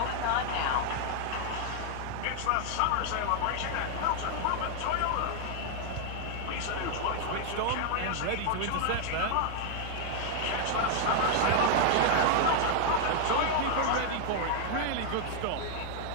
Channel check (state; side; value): different; both; correlation 0.00